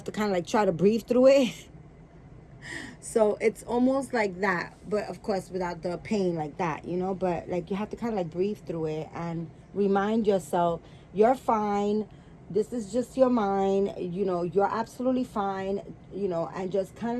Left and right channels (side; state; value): both; identical; correlation 1.00